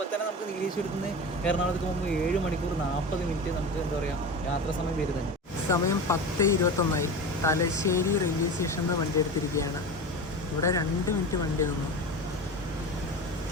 തന്നെ നമുക്ക് നീലേശ്വരത്ത് നിന്ന് എറണാകുളത്തേക്ക് പോകുമ്പോൾ 7 മണിക്കൂർ 40 മിനിറ്റ് നമുക്ക് എന്താ പറയുക യാത്രാ സമയം വരുന്നുണ്ട്. സമയം 10:21. തലശ്ശേരി റെയിൽവേ സ്റ്റേഷനിൽ നിന്ന് വണ്ടി എടുത്തിരിക്കുകയാണ്. ഇവിടെ 2 മിനിറ്റ് വണ്ടി നിന്നു.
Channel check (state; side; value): normal; both; correlation 0.29